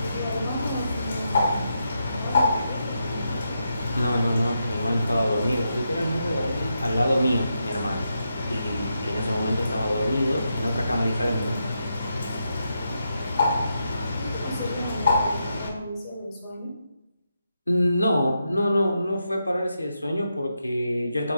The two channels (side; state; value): both; inverted; correlation -0.84